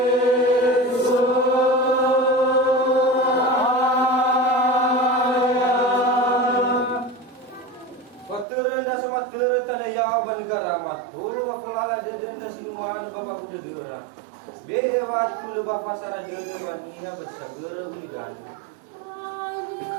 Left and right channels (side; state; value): left; drops out; at 8.5 s